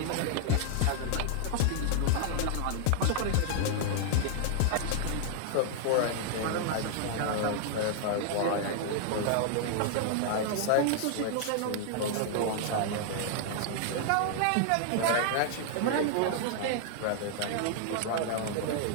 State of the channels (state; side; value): different; both; correlation 0.00